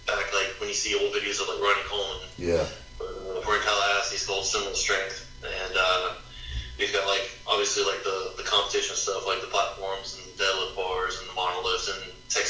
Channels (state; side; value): identical; both; correlation 1.00